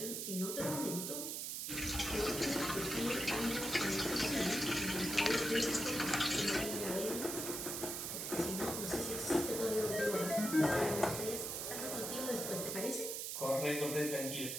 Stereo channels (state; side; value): noise; right; hiss, 3 dB below the sound